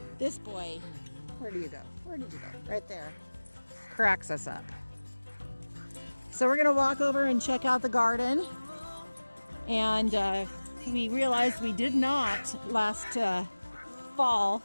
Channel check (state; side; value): inverted; both; correlation -1.00